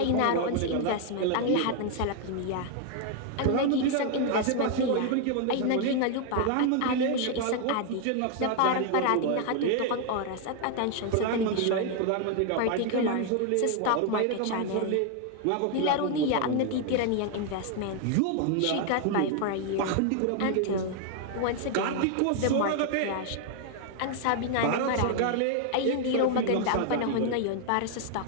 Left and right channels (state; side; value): different; both; correlation 0.00